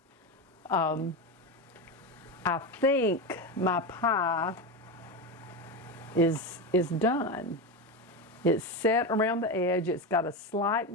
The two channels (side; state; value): both; normal; correlation 0.17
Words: I think my pie is done. It's set around the edge. It's got a slight